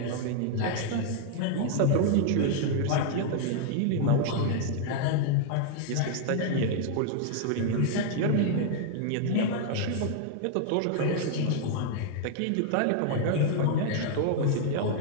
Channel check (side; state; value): both; different; correlation 0.00